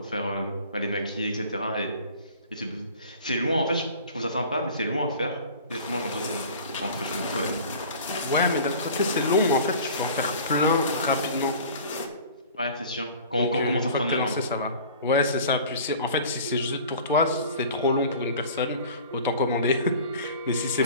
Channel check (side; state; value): both; inverted; correlation -0.43